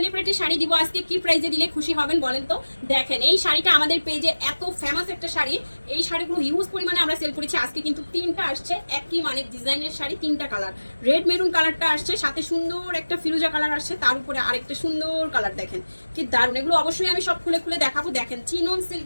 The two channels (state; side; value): inverted; both; correlation -1.00